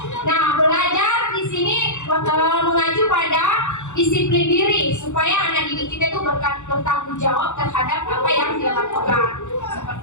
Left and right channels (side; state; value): right; late; 0.84 ms